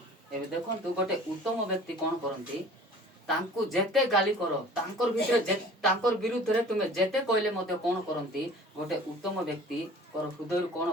एबे देखंतु गोटे उत्तम व्यक्ति कोन करंती तांको जेते गाली करो तांकर भितरे तांकर विरुद्ध रे तुमे जेते कहले मते कोन करंती गोटे उत्तम व्यक्ति कर हृदय कोन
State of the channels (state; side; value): normal; both; correlation 0.46